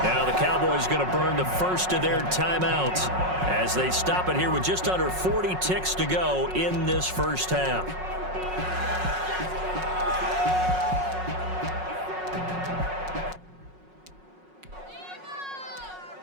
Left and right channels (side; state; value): left; late; 5.4 ms